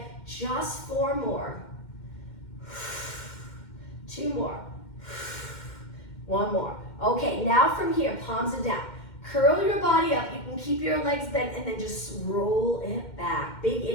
just 4 more. 2 more. 1 more. Okay, now from here, palms are down. Curl your body up, you can keep your legs bent and then just roll it back. Big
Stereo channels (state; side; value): late; right; 2.1 ms